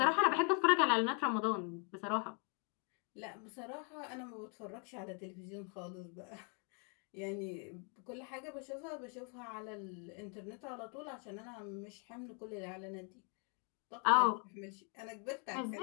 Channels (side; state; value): right; quieter; 38.4 dB